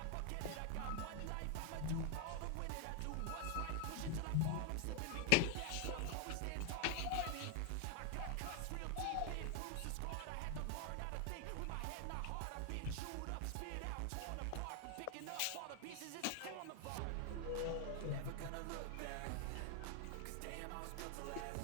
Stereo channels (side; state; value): both; different; correlation 0.00